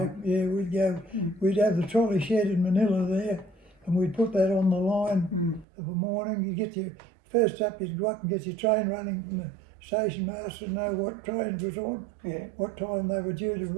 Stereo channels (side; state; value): left; drops out; at 5.7 s